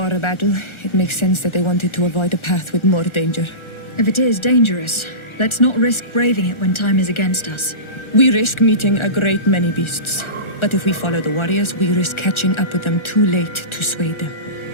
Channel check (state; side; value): late; right; 1.4 ms